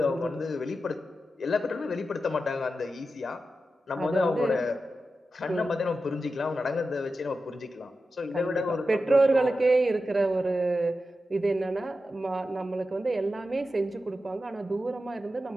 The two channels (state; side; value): normal; both; correlation 0.91